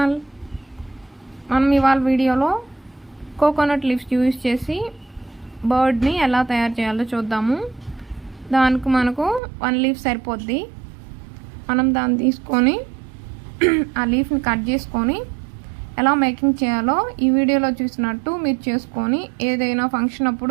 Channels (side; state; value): left; drops out; at 9.4 s